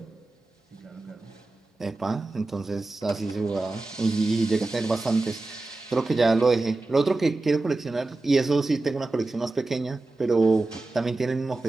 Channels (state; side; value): quieter; left; 3.1 dB